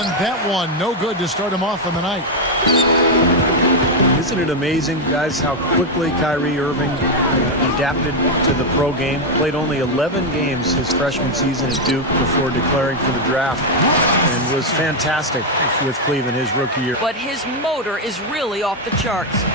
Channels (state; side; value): normal; both; correlation 0.03